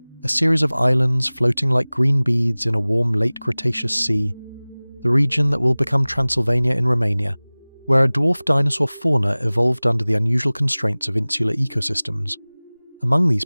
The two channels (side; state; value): both; inverted; correlation -1.00